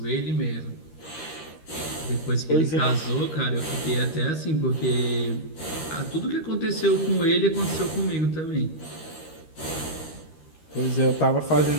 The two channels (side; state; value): right; late; 13 ms